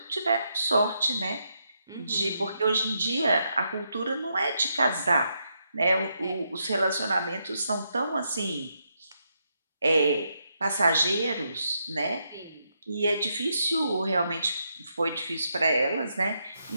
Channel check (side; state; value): both; inverted; correlation -0.80